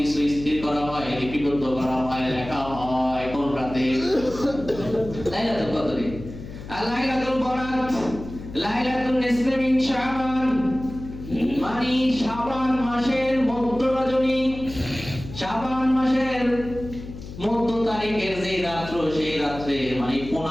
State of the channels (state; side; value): noise; left; hum, 12 dB below the sound